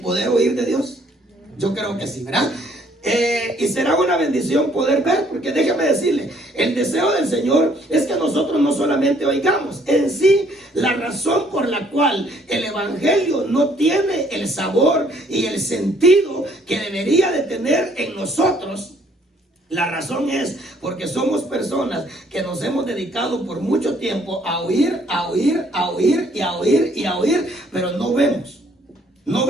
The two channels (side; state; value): both; normal; correlation 0.64